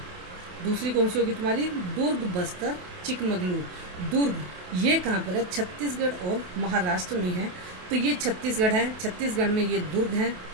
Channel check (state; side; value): late; left; 28 ms